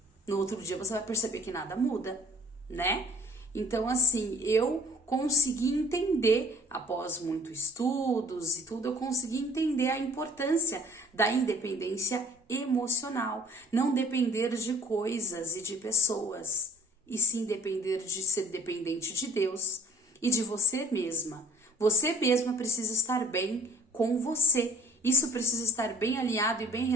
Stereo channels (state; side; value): normal; both; correlation 0.52